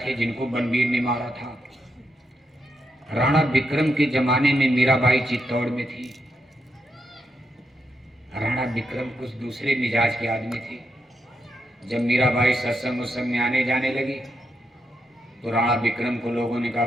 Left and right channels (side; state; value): both; normal; correlation 0.82